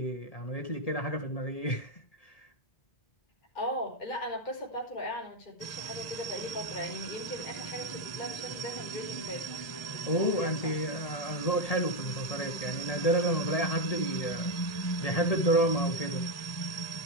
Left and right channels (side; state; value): right; late; 1.3 ms